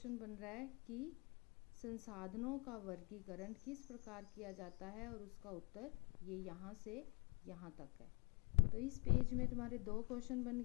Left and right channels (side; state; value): right; quieter; 31.7 dB